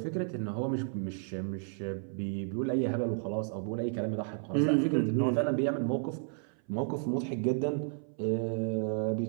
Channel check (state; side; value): silent; left; 56 dB below the other